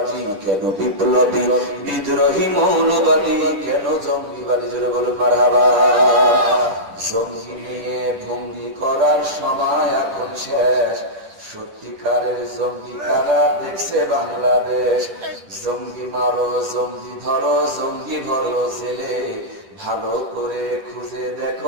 কেন বিপ্লবী, বিদ্রোহী, মৌলবাদী, কেন জঙ্গিবাদী? জোরে বলুন মারহাবা। জঙ্গি নিয়ে ভঙ্গি করার সময় এখন শেষ, সত্যিকারের জঙ্গি কারা দেখছে বাংলাদেশ। জঙ্গি মারো, জঙ্গি ধরো, জঙ্গি ভরো জেলে, ভালো করে খুঁজে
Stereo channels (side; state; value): left; late; 10 ms